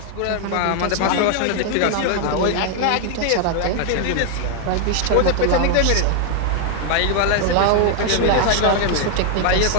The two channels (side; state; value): both; different; correlation 0.00